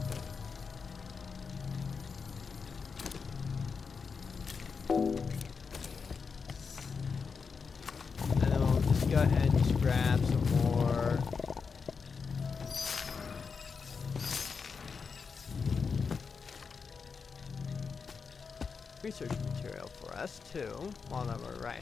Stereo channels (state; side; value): quieter; right; 5.4 dB